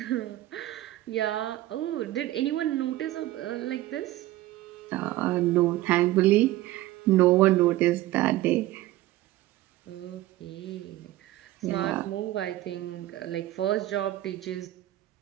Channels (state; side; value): quieter; left; 16.0 dB